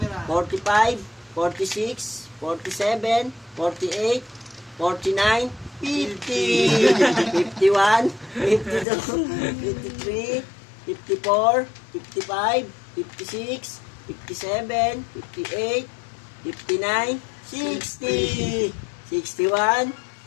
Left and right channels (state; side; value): drops out; right; at 8.8 s